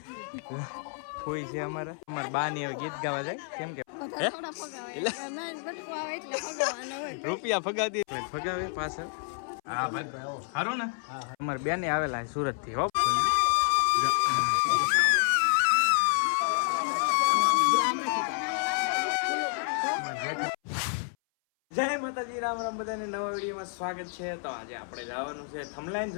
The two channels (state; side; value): silent; right; 58 dB below the other